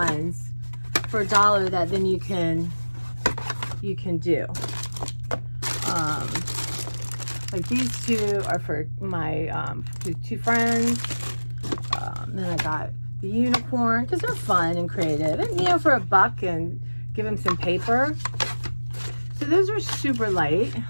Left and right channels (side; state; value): both; inverted; correlation -1.00